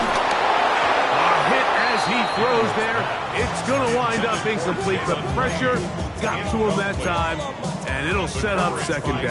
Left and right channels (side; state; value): both; identical; correlation 1.00